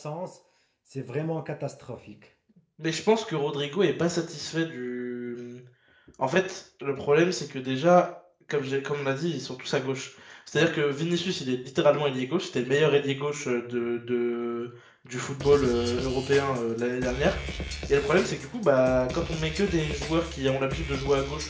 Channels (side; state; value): both; identical; correlation 1.00